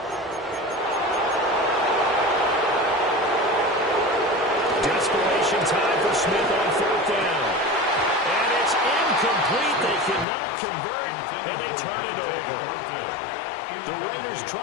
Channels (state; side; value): drops out; right; at 10.2 s